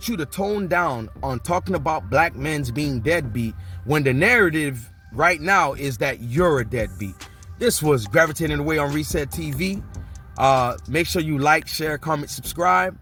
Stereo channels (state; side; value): identical; both; correlation 1.00